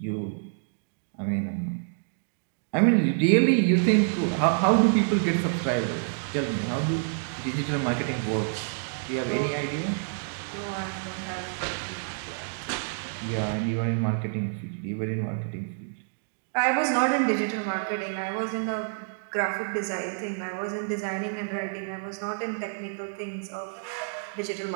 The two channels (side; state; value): left; silent; digital silence